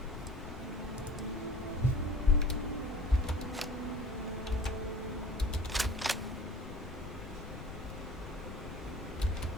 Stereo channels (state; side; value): noise; left; rumble, 12 dB below the sound